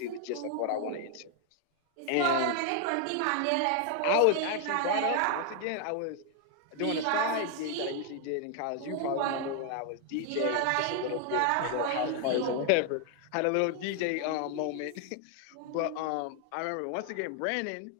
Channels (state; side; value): different; both; correlation 0.00